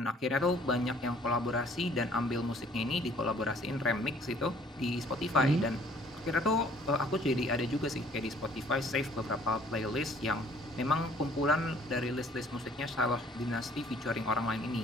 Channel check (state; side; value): normal; both; correlation 0.57